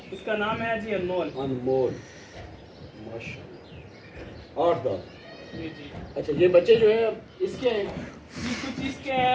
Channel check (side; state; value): both; identical; correlation 1.00